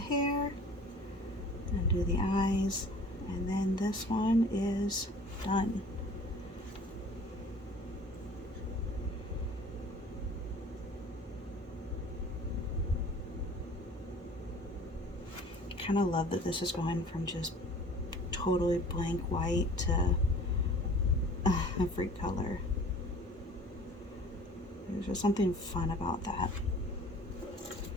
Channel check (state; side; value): normal; both; correlation 0.47